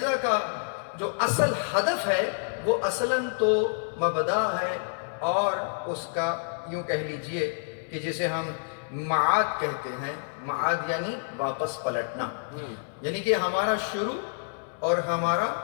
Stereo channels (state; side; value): silent; right; digital silence